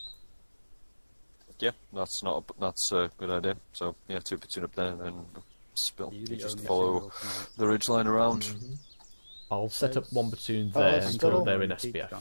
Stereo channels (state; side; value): inverted; both; correlation -1.00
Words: Yeah, that's a good idea. So yeah, 2 platoon up there and then spill. You just follow the ridge line around. I'll set up 1 platoon there until they're in